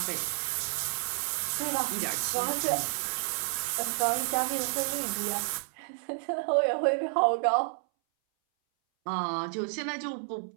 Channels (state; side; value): silent; left; 58 dB below the other